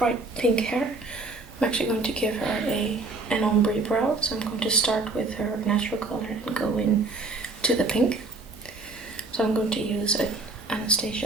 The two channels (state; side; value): quieter; left; 3.4 dB